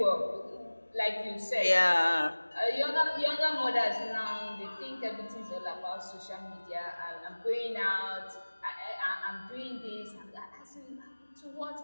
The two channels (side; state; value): both; inverted; correlation -1.00